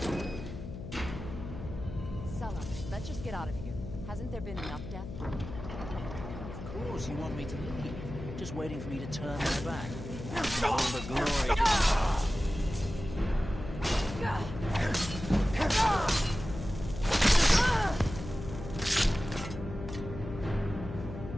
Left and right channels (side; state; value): left; noise; hum, 10 dB below the sound